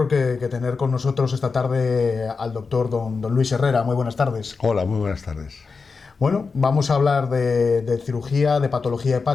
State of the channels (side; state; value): right; quieter; 4.8 dB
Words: que tener con nosotros esta tarde al doctor don Luis Herrera. Muy buenas tardes. Hola, muy buenas tardes. Bueno, vamos a hablar de cirugía, de patología